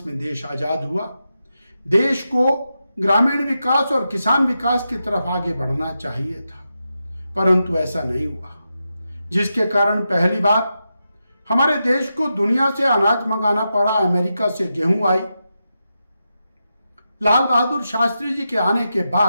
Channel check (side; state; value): both; inverted; correlation -0.88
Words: में देश आजाद हुआ। देश को ग्रामीण विकास और किसान विकास की तरफ आगे बढ़ना चाहिए था, परंतु ऐसा नहीं हुआ, जिसके कारण पहली बार हमारे देश को दुनिया से अनाज मंगाना पड़ा। अमेरिका से गेहूं आई। लाल बहादुर शास्त्री जी के आने के